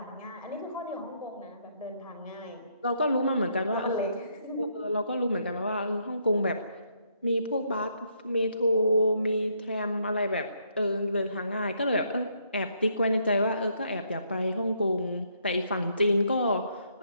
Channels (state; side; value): inverted; both; correlation -0.72